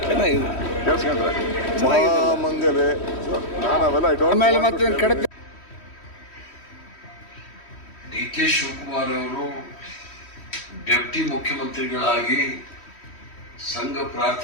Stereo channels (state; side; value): late; right; 3.1 ms